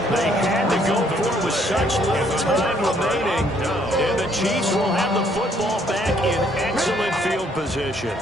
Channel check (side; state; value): both; normal; correlation 0.66